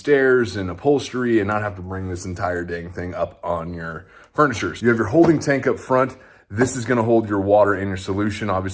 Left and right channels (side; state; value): both; identical; correlation 1.00